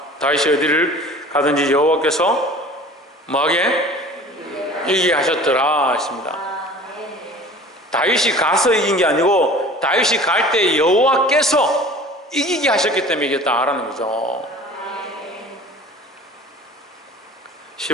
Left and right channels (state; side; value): normal; both; correlation 0.43